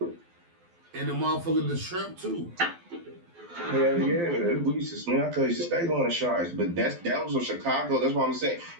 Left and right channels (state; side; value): late; left; 12 ms